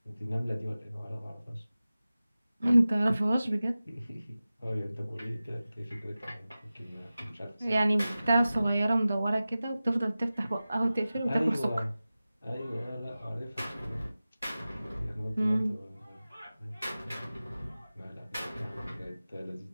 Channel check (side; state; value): both; inverted; correlation -0.96